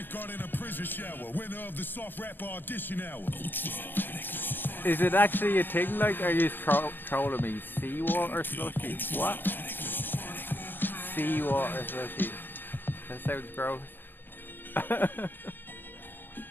in a prison shower. Winner of the soft rap audition hour. Is it actually a thing? Like, are you trolling me? Seawater slushy? What? Seawater slushy. That sounds gross.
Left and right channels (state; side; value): late; right; 0.095 ms